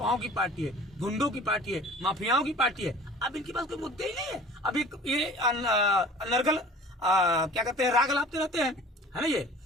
की पार्टी है, गुंडों की पार्टी है, माफियाओं की पार्टी है। अब इनके पास कोई मुद्दे ही नहीं है। अब ये अनर्गल क्या कहते हैं, राग लापते रहते हैं, है ना ये।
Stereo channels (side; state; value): both; normal; correlation 0.45